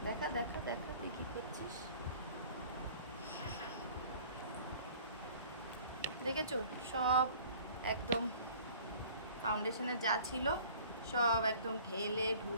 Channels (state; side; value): inverted; both; correlation -0.49